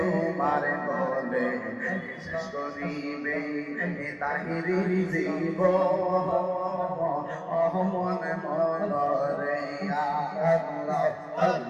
গলে শেষ করিবে তাহিরির জীব মন মন রে আল্লাহ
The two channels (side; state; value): both; identical; correlation 1.00